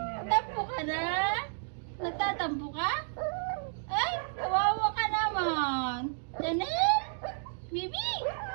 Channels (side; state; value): left; silent; 57 dB below the other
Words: Tampo ka na? Nagtatampo ka? Ay, kawawa ka naman. Chanel? Bibi?